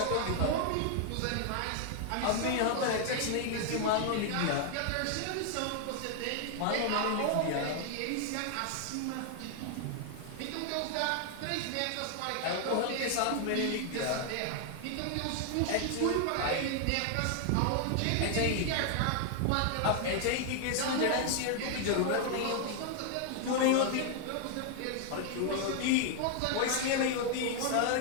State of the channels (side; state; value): both; different; correlation 0.00